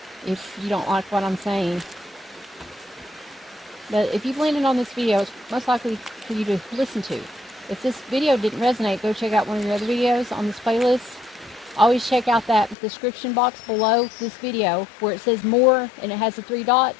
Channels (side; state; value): right; drops out; at 12.8 s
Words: if you don't like what I'm saying. But if you've landed on this video, it's most likely for you to listen to. If this video didn't resonate, go check out one of your other videos on this playlist. Always check out that description box below this video where it says more and it has the 3